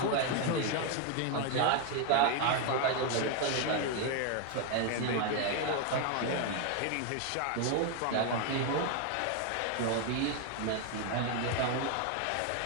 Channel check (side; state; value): both; different; correlation 0.01